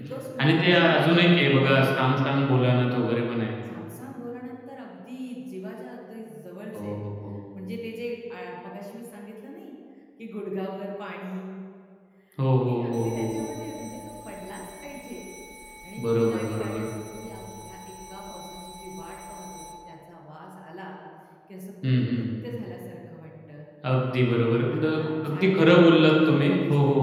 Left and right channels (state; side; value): identical; both; correlation 1.00